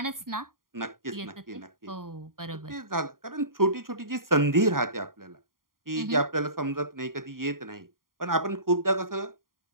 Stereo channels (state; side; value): late; left; 0.91 ms